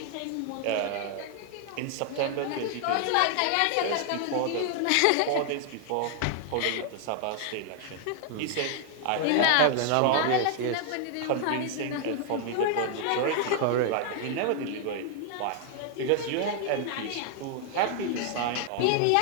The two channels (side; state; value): both; different; correlation 0.00